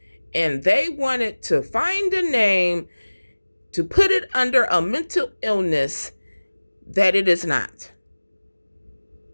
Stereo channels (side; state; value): both; inverted; correlation -1.00